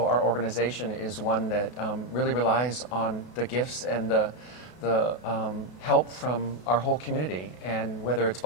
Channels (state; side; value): late; right; 32 ms